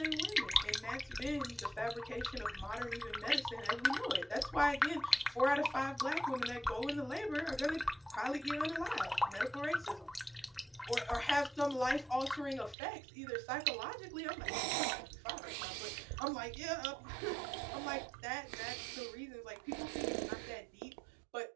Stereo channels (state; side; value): drops out; left; at 12.8 s